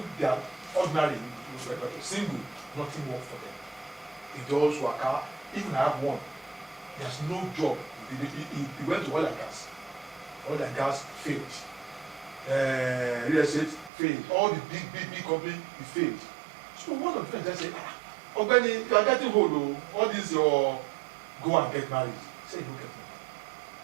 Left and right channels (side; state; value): left; drops out; at 13.9 s